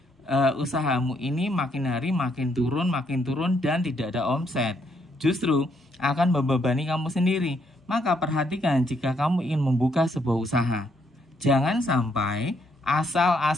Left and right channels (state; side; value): normal; both; correlation 0.73